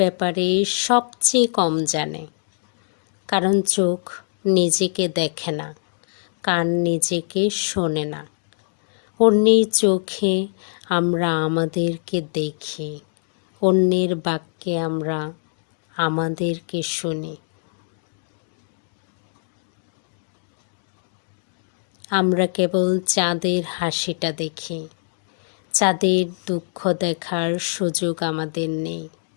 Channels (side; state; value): right; silent; digital silence